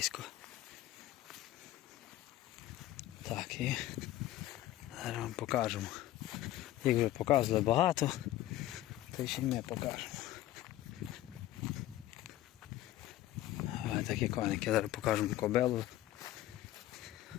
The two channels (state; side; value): quieter; right; 14.5 dB